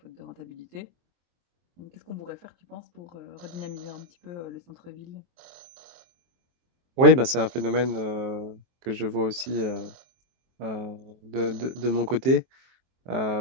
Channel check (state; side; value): late; left; 23 ms